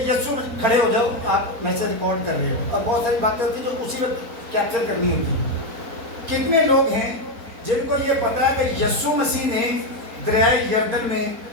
یسوع، کھڑے ہو جاؤ، آپ میسج ریکارڈ کر رہے ہو اور بہت ساری باتیں ہوتی ہیں جو اسی وقت کیپچر کرنی ہوتی ہیں. کتنے لوگ ہیں جن کو یہ پتا ہے کہ یسوع مسیح نے دریائے یردن میں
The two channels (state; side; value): late; left; 4.3 ms